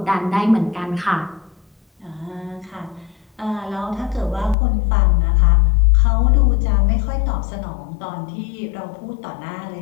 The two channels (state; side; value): drops out; right; at 4.5 s